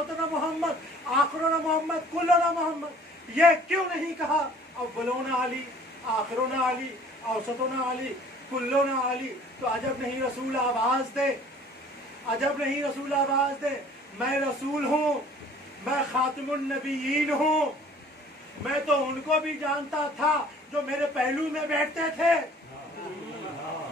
मोहम्मद, आखिरुना मोहम्मद, कुल्लुना मोहम्मद? ये क्यों नहीं कहा अव्वलुना अली, आखिरुना अली, औसतुना अली, कुल्लुना अली? तो अजब नहीं रसूल आवाज दे, अजब नहीं रसूल आवाज दे, मैं रसूल हूँ, मैं खातिमुन नबीयीन हूँ। मैं तो उनको भी जानता था जो मेरे पहलू में बैठते थे।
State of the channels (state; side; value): normal; both; correlation 0.52